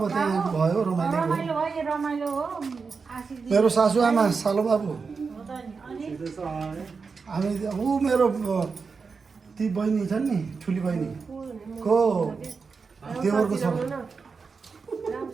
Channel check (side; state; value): left; quieter; 5.0 dB